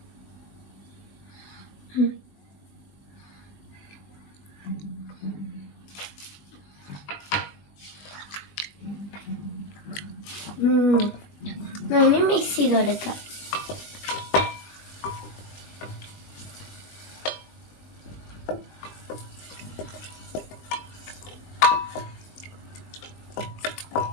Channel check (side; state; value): right; late; 21 ms